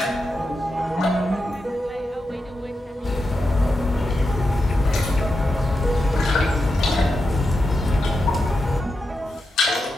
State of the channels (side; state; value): both; normal; correlation 0.88